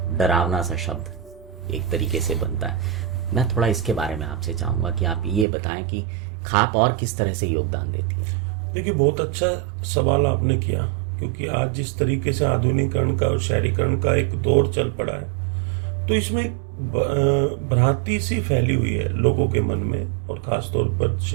डरावना सा शब्द एक तरीके से बनता है। मैं थोड़ा इसके बारे में आपसे चाहूँगा कि आप ये बताएं कि खाप और किस तरह से योगदान देती है। देखिए, बहुत अच्छा सवाल आपने किया, क्योंकि आज जिस तरीके से आधुनिकीकरण का और शहरीकरण का एक दौर चल पड़ा है, तो इसमें भ्रांति सी फैली हुई है लोगों के मन में, और खासतौर पर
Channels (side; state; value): left; drops out; at 5.5 s